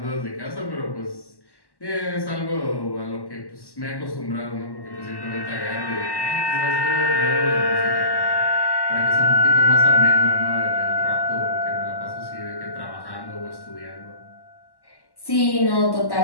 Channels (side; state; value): right; late; 1.1 ms